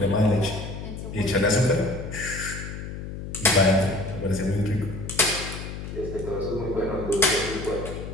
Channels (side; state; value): left; noise; hum, 8 dB below the sound